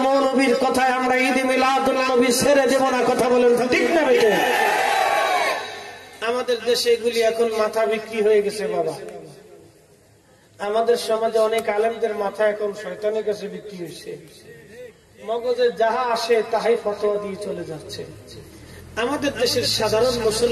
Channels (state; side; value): identical; both; correlation 1.00